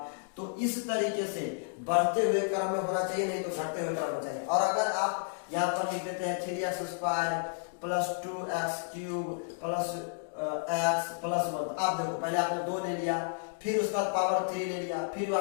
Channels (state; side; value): silent; right; digital silence